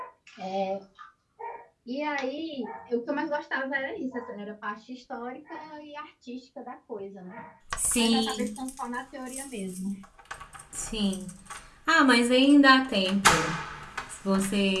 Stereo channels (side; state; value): both; identical; correlation 1.00